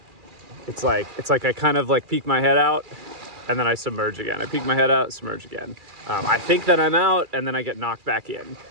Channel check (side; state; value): left; late; 2.4 ms